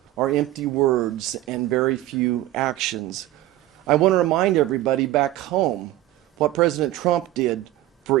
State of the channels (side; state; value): left; quieter; 15.4 dB